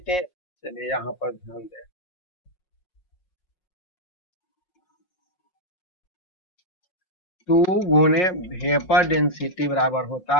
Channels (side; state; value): right; late; 5.5 ms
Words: चलिए यहाँ पर ध्यान दें, 2 गुने वेपर डेंसिटी बराबर होता